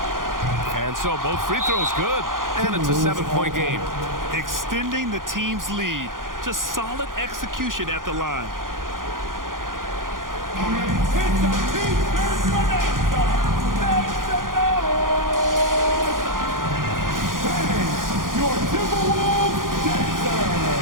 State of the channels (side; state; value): left; late; 0.90 ms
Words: And so both free throws good, and it's a 7-point game. Extending the team's lead. Just solid execution at the line. It's a defense bonanza. Make some noise. And your Timberwolves dancer.